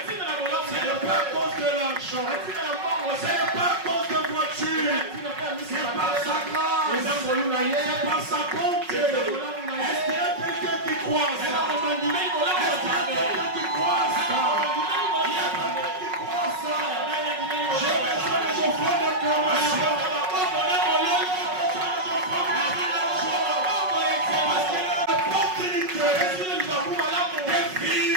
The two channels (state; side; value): late; left; 5.4 ms